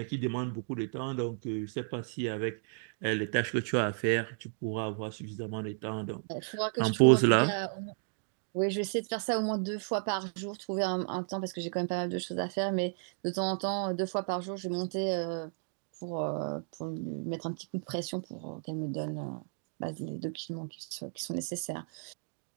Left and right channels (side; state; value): left; silent; digital silence